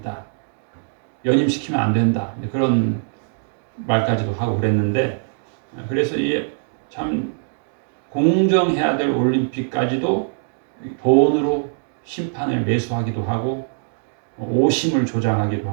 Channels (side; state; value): left; silent; digital silence